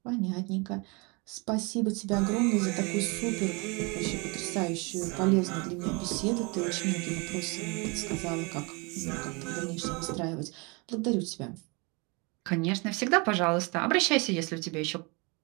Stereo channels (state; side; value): quieter; left; 29.2 dB